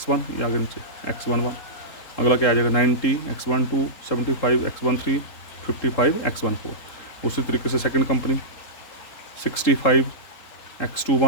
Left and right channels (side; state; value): right; late; 3.8 ms